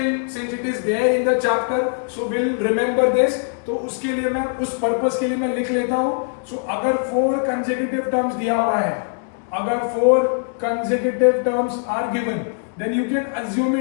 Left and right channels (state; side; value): silent; right; 58 dB below the other